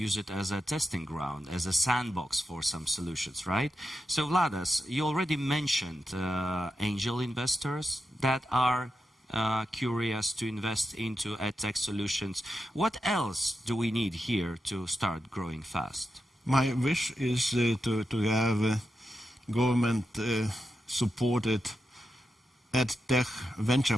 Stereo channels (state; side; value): normal; both; correlation 0.88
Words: it as a testing ground, as a sandbox for some solutions, right? So Vladas, you already mentioned angel investors that are curious to invest into EdTech solutions. What else do we need here to start growing fast? My wish is to have government supported EdTech venture